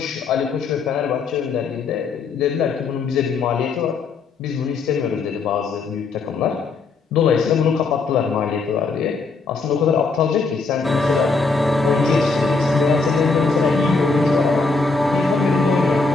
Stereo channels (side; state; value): right; quieter; 4.3 dB